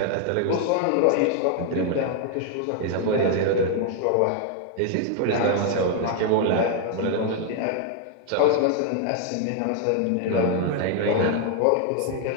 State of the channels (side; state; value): both; different; correlation 0.00